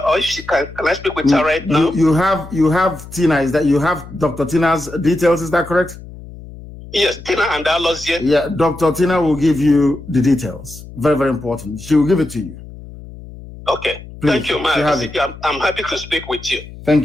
or if she can I speak with her right now? You have Tina. Is that you have Dr. Tina's details? Is that correct? Yes, Tina and Alozie. Yeah, Dr. Tina will give you the details. Very, very important. She will give it to you. Okay. Please, thank you, Mazi. I'm happy to speak with you.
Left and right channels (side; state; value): left; noise; hum, 16 dB below the sound